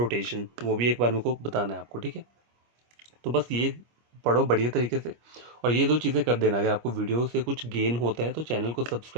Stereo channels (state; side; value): late; left; 25 ms